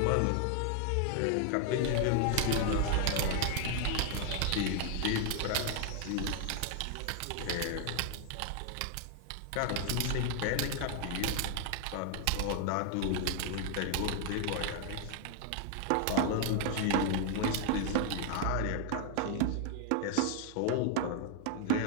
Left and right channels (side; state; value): both; different; correlation 0.00